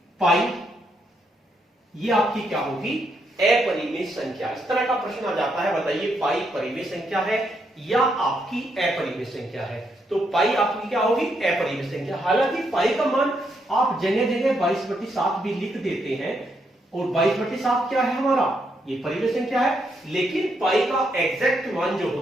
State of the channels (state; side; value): normal; both; correlation 0.78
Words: पाई, ये आपकी क्या होगी? अपरिमेय संख्या। इस तरह का प्रश्न आ जाता है, बताइए पाई परिमेय संख्या है या आपकी अपरिमेय संख्या है? तो पाई आपकी क्या होगी? अपरिमेय संख्या। हालांकि पाई का मान आप जगह जगह 22/7 भी लिख देते हैं, और 22/7 क्या है हमारा? ये परिमेय संख्या है। लेकिन पाई का एग्जैक्ट मान जो